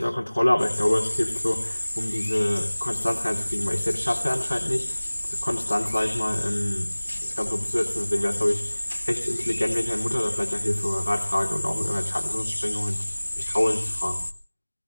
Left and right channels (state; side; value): inverted; both; correlation -1.00